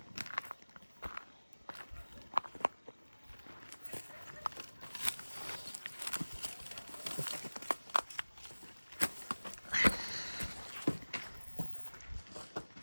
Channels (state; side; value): inverted; both; correlation -1.00